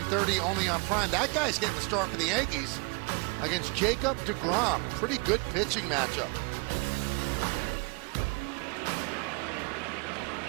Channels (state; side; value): quieter; left; 31.6 dB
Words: only on Prime. That guy's getting the start for the Yankees against Jacob deGrom. Pretty good pitching matchup.